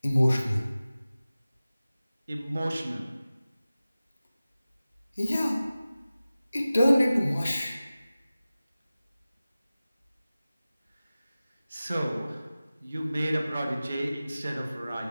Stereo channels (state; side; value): inverted; both; correlation -0.96